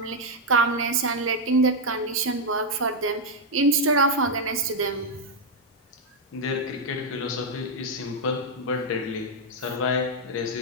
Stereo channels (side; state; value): both; normal; correlation 0.00